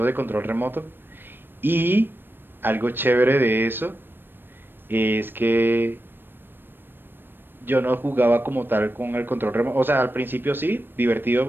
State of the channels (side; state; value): left; late; 0.096 ms